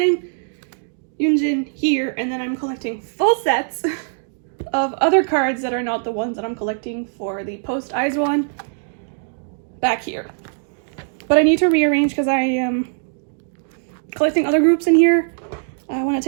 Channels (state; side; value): silent; left; digital silence